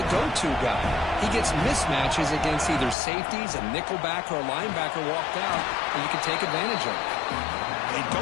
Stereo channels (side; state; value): right; drops out; at 3.0 s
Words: go-to guy. He gets mismatches against either safeties, a nickelback, or a linebacker walked out, and you can take advantage of it. They